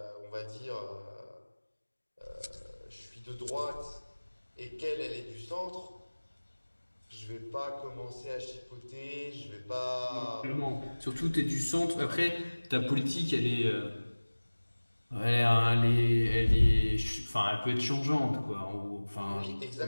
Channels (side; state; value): both; inverted; correlation -1.00